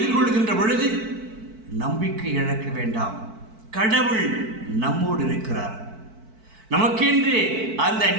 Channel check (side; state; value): left; late; 4.5 ms